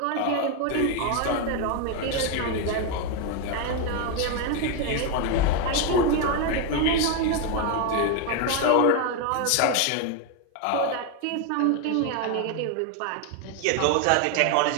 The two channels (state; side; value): different; both; correlation 0.01